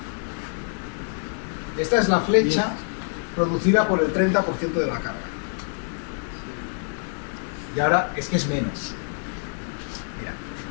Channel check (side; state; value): right; silent; 61 dB below the other